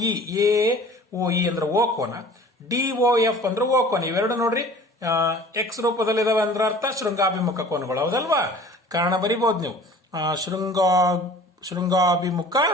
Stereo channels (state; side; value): normal; both; correlation 0.46